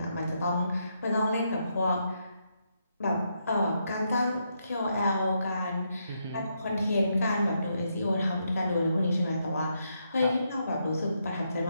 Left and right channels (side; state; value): both; inverted; correlation -0.79